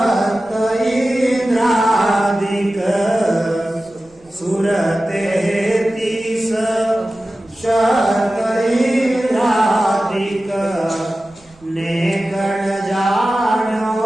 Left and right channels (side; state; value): right; noise; rumble, 30 dB below the sound